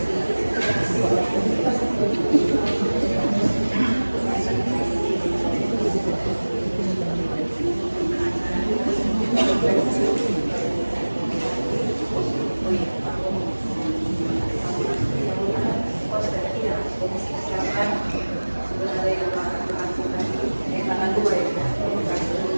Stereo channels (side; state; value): both; inverted; correlation -1.00